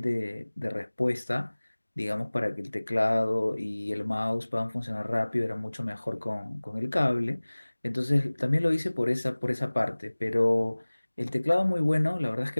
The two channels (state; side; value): inverted; both; correlation -1.00